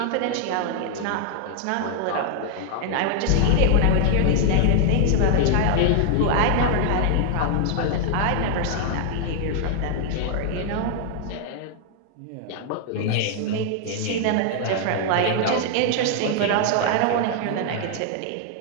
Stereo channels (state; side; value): different; both; correlation 0.00